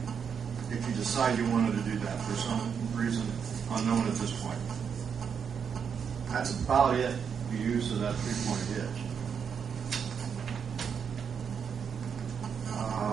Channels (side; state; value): left; quieter; 7.0 dB